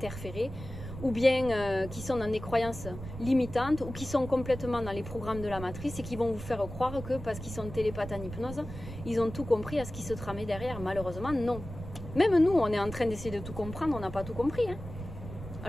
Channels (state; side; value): noise; right; rumble, 11 dB below the sound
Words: ou bien qui sont dans des croyances limitantes, ou qui sont complètement dans les programmes de la matrice et qui vont vous faire croire que parce qu'ils sont télépathes en hypnose, ils ont tout compris à ce qui se tramait derrière. Malheureusement, non. Même nous, on est en train d'essayer de tout comprendre, on n'a pas tout compris. Hein.